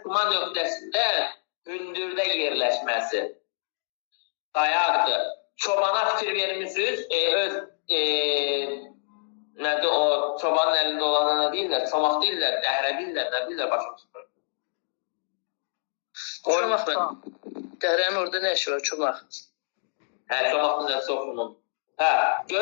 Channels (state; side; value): silent; right; digital silence